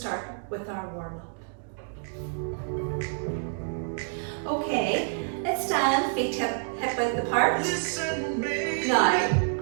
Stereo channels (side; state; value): left; silent; digital silence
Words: with our warm-up. Okay, let's stand, feet hip width apart. Now,